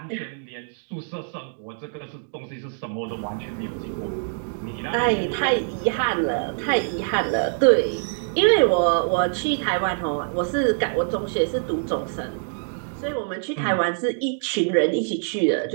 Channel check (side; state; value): left; silent; digital silence